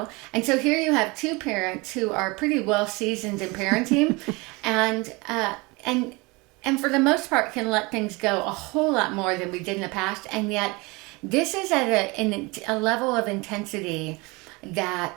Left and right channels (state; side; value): quieter; left; 25.4 dB